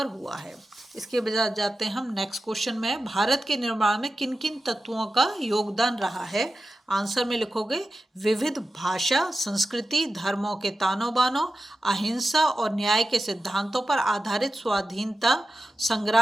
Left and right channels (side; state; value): both; normal; correlation 0.93